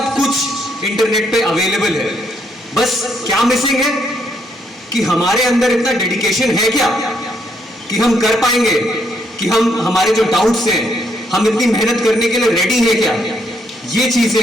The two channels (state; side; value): normal; both; correlation 0.73